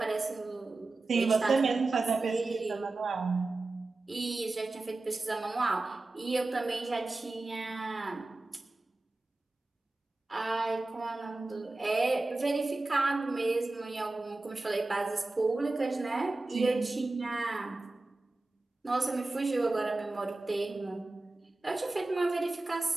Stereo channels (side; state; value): left; quieter; 3.2 dB